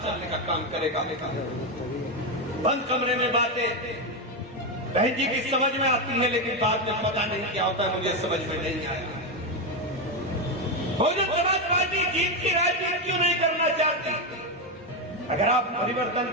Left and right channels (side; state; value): both; normal; correlation 0.08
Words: चलने का काम करेगा। बंद कमरे में बातें बहन जी की समझ में आती है, लेकिन बाद में पता नहीं क्या होता है, मुझे समझ में नहीं आया। बहुजन समाज पार्टी जीत की राजनीति क्यों नहीं करना चाहती? अगर आप परिवर्तन